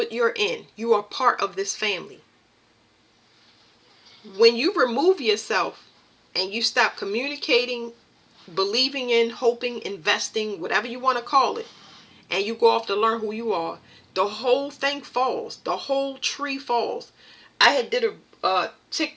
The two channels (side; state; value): both; identical; correlation 1.00